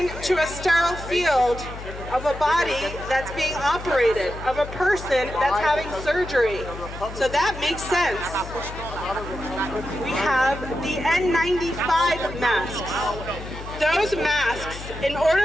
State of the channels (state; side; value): noise; left; hum, 11 dB below the sound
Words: a sterile field of a body that's being operated, of a person that's having surgery. So that makes sense. We have the N95 masks. Those masks, in